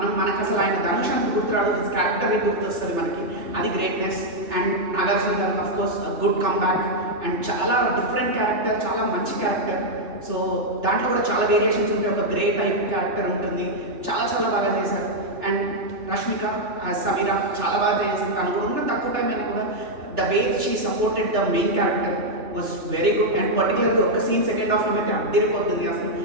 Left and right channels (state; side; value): late; left; 2.9 ms